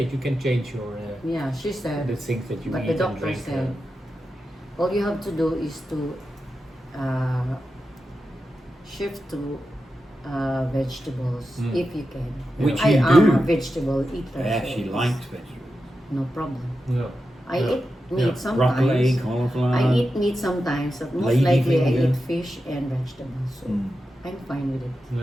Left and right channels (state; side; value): normal; both; correlation 0.90